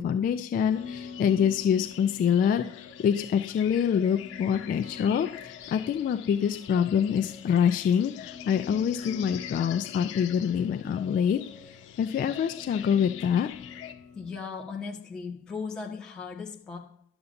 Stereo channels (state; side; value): quieter; right; 7.7 dB